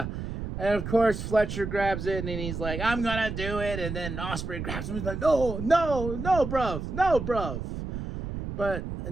and of course Fletcher grabs it, and then he's like, I'm gonna do it. And then Ospreay grabs him, he's like, no, bruv. But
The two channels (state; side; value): noise; right; rumble, 6 dB below the sound